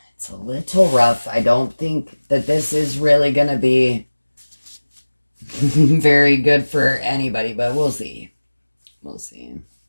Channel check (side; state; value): both; inverted; correlation -1.00